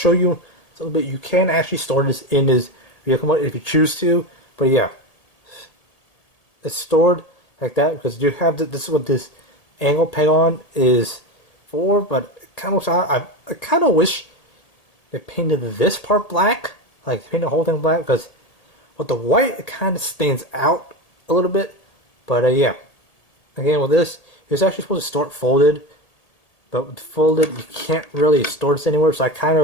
you a little bit. You can actually store this in his vehicle mode if you choose to. But yeah, it's stored like that because you have this is what this angle peg on is for. But I kind of wish they painted this part black, like paint the whole thing black, because with the white it kind of stands out a little bit. But yeah, again with this, it's actually supposed to store it folded, but with folded you can't really store this anywhere. So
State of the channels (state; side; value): late; right; 1.8 ms